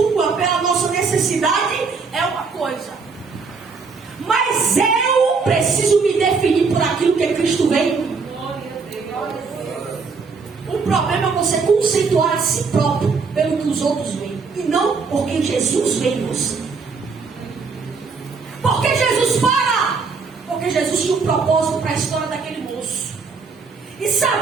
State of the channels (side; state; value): left; quieter; 4.8 dB